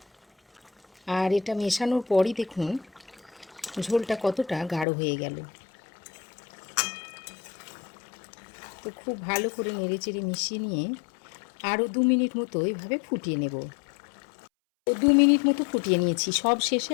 আর এটা মেশানোর পরই দেখুন ঝোলটা কতটা গাঢ় হয়ে গেল। তো খুব ভালো করে নেড়েচেড়ে মিশিয়ে নিয়ে আরও 2 মিনিট মতো এইভাবে ফুটিয়ে নেব। তো 2 মিনিট মতো ফুটিয়ে নিয়েছি। সব শেষে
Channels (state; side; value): drops out; right; at 4.9 s